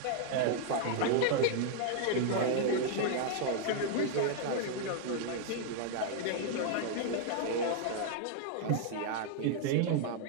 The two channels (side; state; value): both; different; correlation 0.00